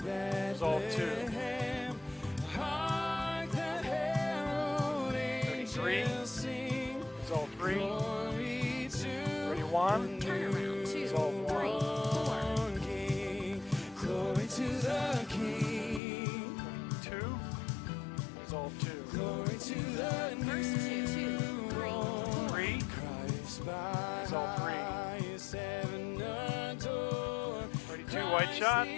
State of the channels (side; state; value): right; drops out; at 16.0 s